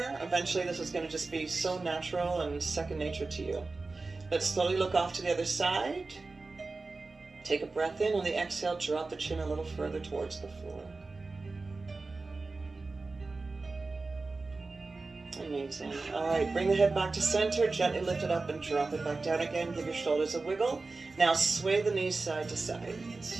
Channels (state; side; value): quieter; left; 3.7 dB